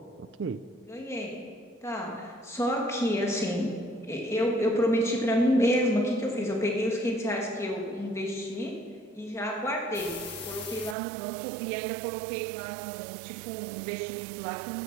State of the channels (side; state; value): left; drops out; at 11.0 s